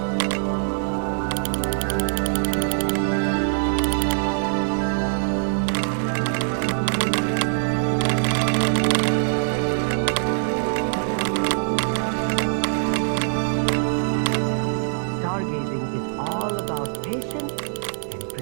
Stargazing is all about patience and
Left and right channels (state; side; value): silent; left; 63 dB below the other